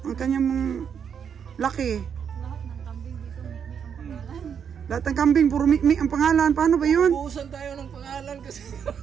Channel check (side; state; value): left; quieter; 7.5 dB